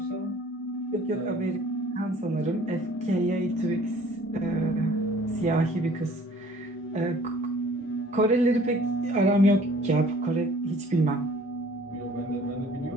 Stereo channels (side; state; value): both; normal; correlation 0.53